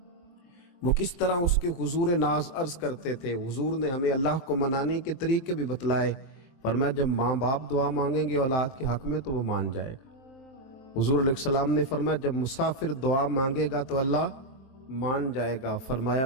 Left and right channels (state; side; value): late; right; 23 ms